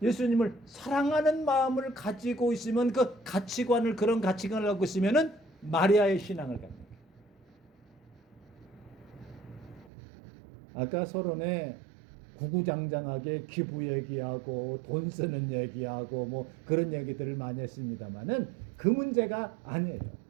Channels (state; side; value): drops out; left; at 9.9 s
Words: 예수님을 사랑하는 마음을 가지고 있으면, 그런 가치관을 갖고 있으면은 마리아의 신앙을 갖는 거예요. 아까 서론에 구구장장하게 기부 얘기하고 돈 쓰는 얘기하고 뭐 그런 얘기들을 많이 했습니다만은 그 문제가 아니에요.